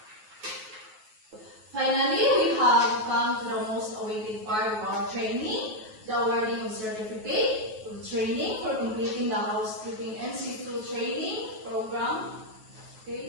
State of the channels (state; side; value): late; left; 9.3 ms